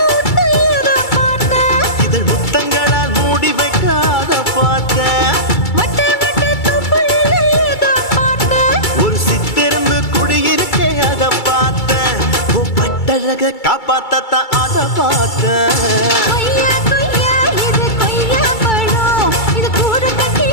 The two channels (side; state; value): right; late; 2.3 ms